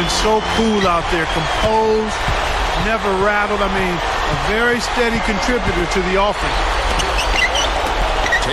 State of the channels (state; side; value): identical; both; correlation 1.00